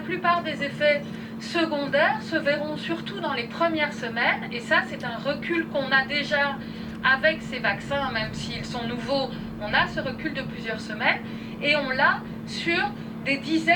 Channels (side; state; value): both; identical; correlation 1.00